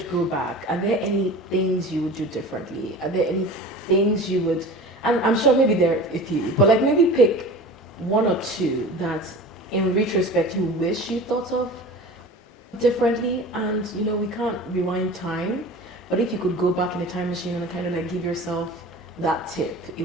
go back, are there any things you would do differently? Are there any things you would, and I'm sure maybe there are a few, but like maybe pick 1 or 2 that in retrospect you wish you thought of differently. And you know, we can't rewind time, but if you could go back in a time machine and kind of like give yourself that tip, it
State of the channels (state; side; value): normal; both; correlation 0.37